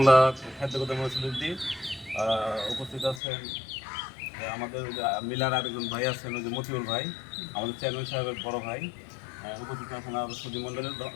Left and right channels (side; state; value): right; drops out; at 3.2 s